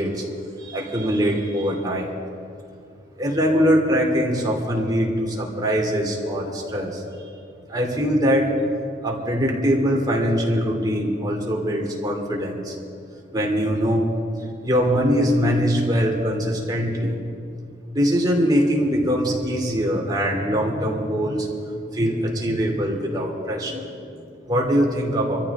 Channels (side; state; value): both; normal; correlation 0.67